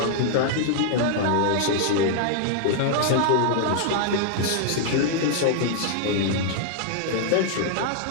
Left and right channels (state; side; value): different; both; correlation -0.01